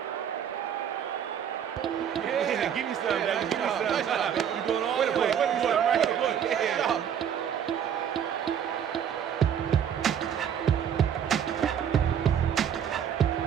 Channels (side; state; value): left; quieter; 8.8 dB